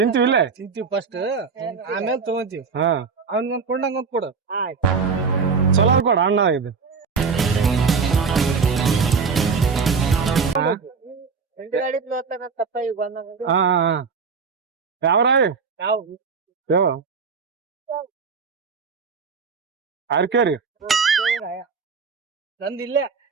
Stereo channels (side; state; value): left; quieter; 5.3 dB